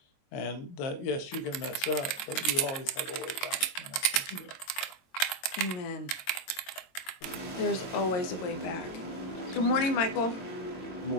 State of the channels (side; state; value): right; late; 22 ms